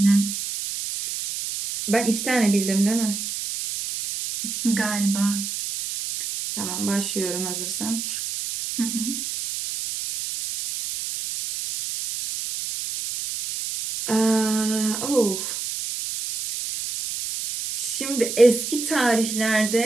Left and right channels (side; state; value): right; noise; hiss, 5 dB below the sound